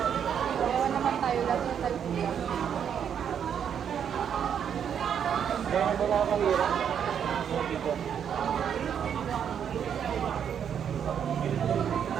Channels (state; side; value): quieter; left; 8.3 dB